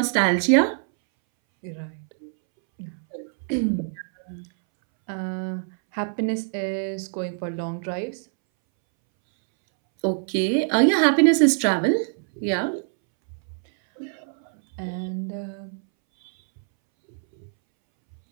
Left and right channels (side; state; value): left; silent; 62 dB below the other